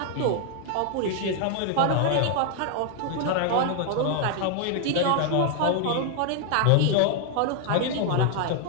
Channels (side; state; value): both; different; correlation 0.00